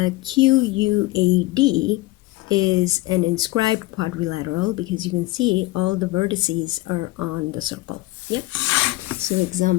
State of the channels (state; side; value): quieter; right; 19.4 dB